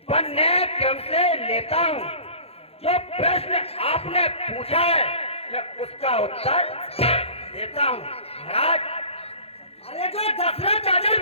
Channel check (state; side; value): late; right; 0.29 ms